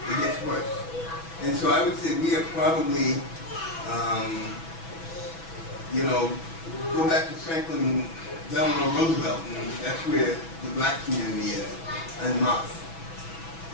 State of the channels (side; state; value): right; late; 6.1 ms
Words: It gets worse. And so I would say we are probably, go back to Franklin Delano Roosevelt, and that's where the black community is, en masse.